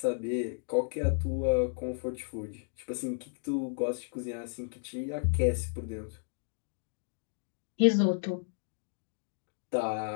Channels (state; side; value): silent; right; digital silence